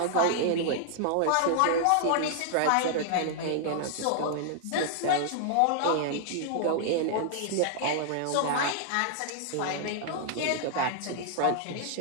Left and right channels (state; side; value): different; both; correlation -0.01